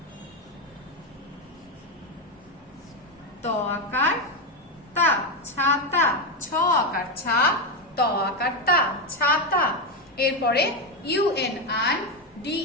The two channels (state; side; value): normal; both; correlation 0.09